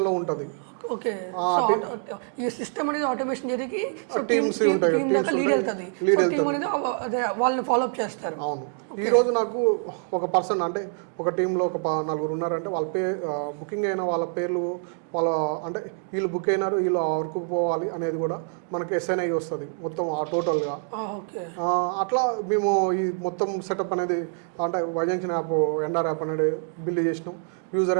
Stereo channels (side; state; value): left; silent; 57 dB below the other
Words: ఉంటుంది. ఓకే, ఈ సిస్టమ్ అనేది ఆటోమేషన్ జరిగి టీమ్స్ ఉంటాయి, లీడ్ వెళ్తుంది, వాళ్ళని ఫాలో అప్ చేస్తారు. అవును. ఈరోజు నాకు ఒక పర్సన్ అంటే ఒక టీంలో ఒక 4 ఉన్నారంటే వాళ్ళ బుకింగ్ అయిన వాళ్ళ పేర్లు అంటే వీళ్ళు బుక్ అయినారు, వీళ్ళు వర్క్ పోవాలి అనేది కూడా మనకి ఎస్ఎన్ఐ వస్తుంది మొత్తం టోటల్గా. అట్లా మేము ఈ మొత్తం సెటప్ అనేది అంటే వైజంక్షన్ యాప్ ఎన్ఆర్ యాప్ అనేది బిల్డ్ చేసినాం. యూజర్